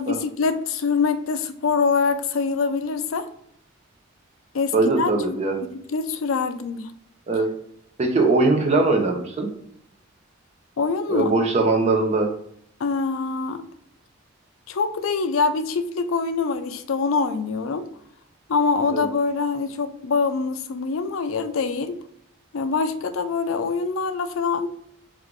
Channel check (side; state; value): both; normal; correlation 0.03